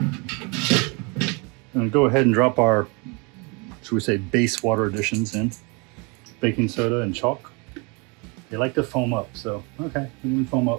And go ahead and drop our, should we say, base water additions in. Baking soda and chalk. They like to foam up, so okay, we can foam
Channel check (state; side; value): quieter; left; 30.9 dB